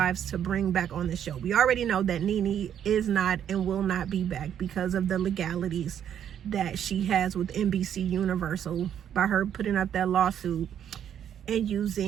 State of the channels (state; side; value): quieter; left; 9.4 dB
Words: to bring back on the show. We already know that Nene is not and will not be back because of the legalities that she has with NBC Universal by her putting up that lawsuit and